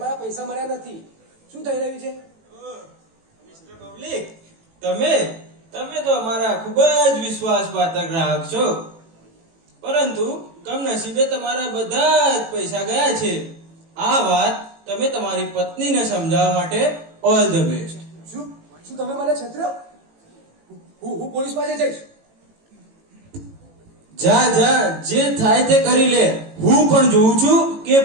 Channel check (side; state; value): left; late; 18 ms